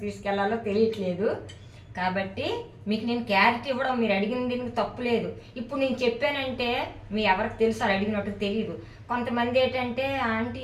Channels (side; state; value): both; identical; correlation 1.00